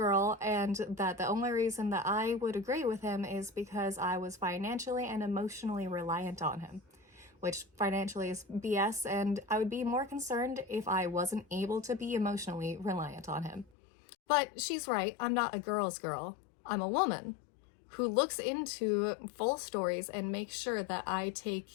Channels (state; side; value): drops out; right; at 13.7 s